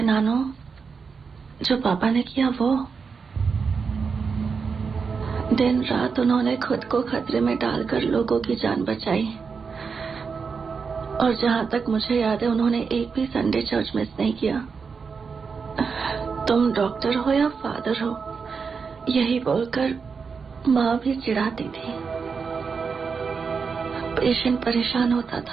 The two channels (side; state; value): left; quieter; 5.4 dB